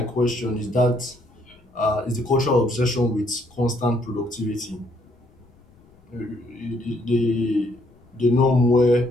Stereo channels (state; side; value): noise; left; rumble, 29 dB below the sound